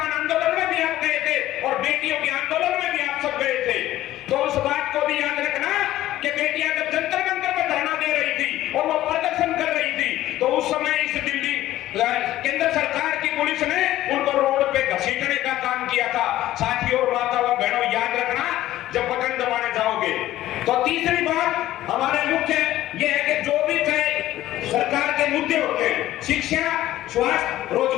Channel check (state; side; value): quieter; right; 14.5 dB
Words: आंदोलन में भी आप गए थे और बेटियों के आंदोलन में भी आप सब गए थे। तो उस बात को भी याद रखना कि बेटियां जब जंतर मंतर पे धरना दे रही थी और वो प्रदर्शन कर रही थी तो उस समय इस दिल्ली केंद्र सरकार की पुलिस ने उनको रोड पे घसीटने का काम किया था। साथियों और माता व बहनों, याद रखना जब बटन दबाने जाओगे। तो तीसरी बात हमारे मुख्य ये है कि जो भी चाहे सरकार के मुद्दे होते हैं, शिक्षा, स्वास्थ्य,